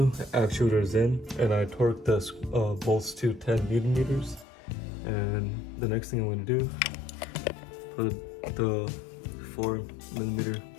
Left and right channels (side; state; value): right; drops out; at 4.5 s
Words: actuator is in, and I torqued the bolts to 10 Newton meters. And the next thing I'm going to do, put the 4mm